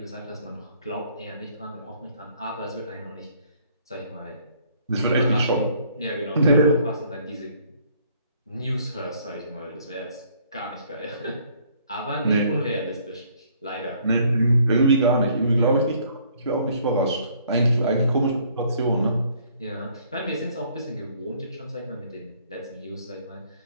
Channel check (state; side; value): inverted; both; correlation -0.62